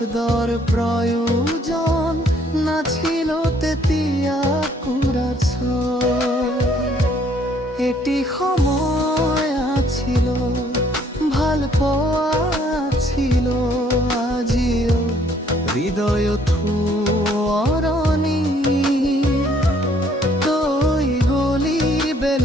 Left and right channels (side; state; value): both; normal; correlation 0.64